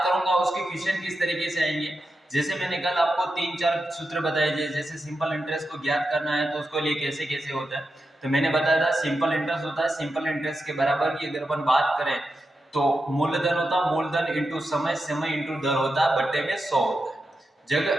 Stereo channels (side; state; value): both; normal; correlation 0.89